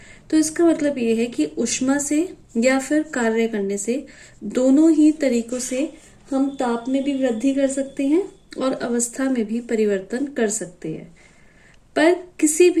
तो इसका मतलब ये है कि ऊष्मा से या फिर कार्य करने से, दोनों ही तरीकों से हम ताप में भी वृद्धि कर सकते हैं और अवस्था में भी परिवर्तन कर सकते हैं। पर किसी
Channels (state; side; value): identical; both; correlation 1.00